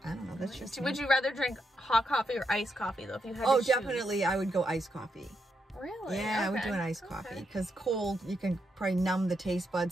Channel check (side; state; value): both; normal; correlation 0.81